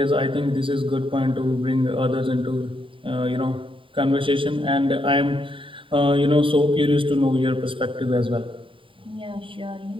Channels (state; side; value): late; left; 0.25 ms